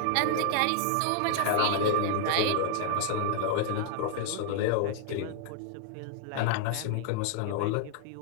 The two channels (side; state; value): both; different; correlation 0.00